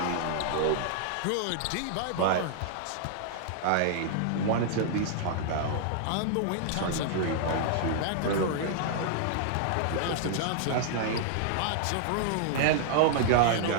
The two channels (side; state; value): both; different; correlation -0.01